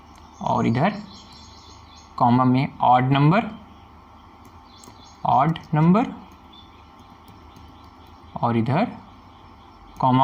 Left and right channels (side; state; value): both; identical; correlation 1.00